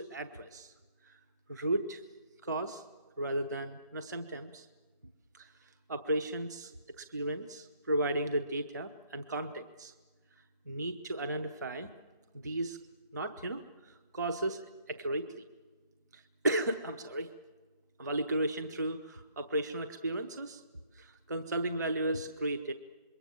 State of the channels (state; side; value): inverted; both; correlation -0.65